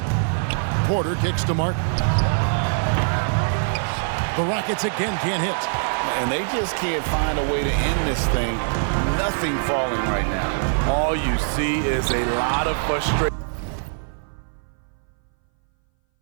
Porter kicks to Martin. The Rockets again can't hit. And they just can't find a way to end this thing. Nothing falling right now. All you see is a lot of frustration.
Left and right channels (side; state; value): left; silent; 60 dB below the other